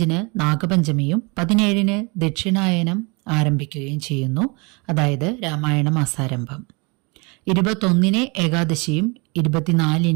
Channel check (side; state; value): left; quieter; 29.4 dB